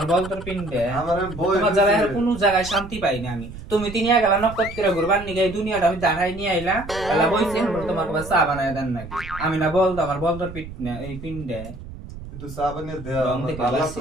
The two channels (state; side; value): noise; right; rumble, 13 dB below the sound